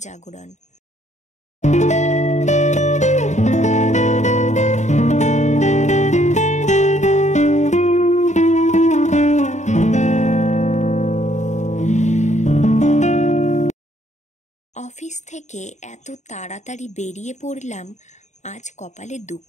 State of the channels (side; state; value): right; late; 0.34 ms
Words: জাগরণ। অফিস থেকে এত তাড়াতাড়ি বেরিয়ে পড়লাম, আজ কপালে